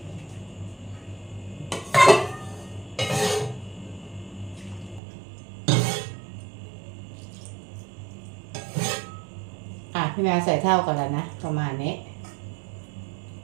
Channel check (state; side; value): drops out; left; at 5.0 s